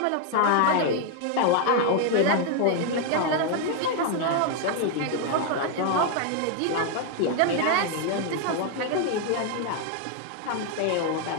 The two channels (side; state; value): both; different; correlation 0.01